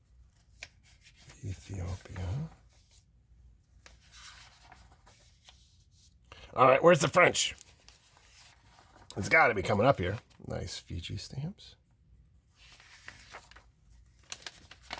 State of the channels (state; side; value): identical; both; correlation 1.00